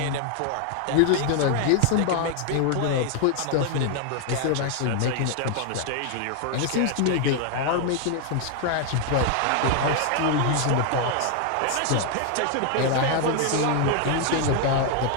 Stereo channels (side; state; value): both; different; correlation 0.00